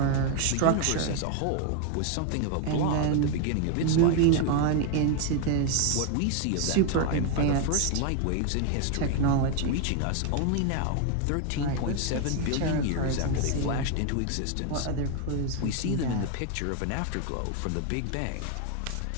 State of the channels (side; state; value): both; different; correlation 0.01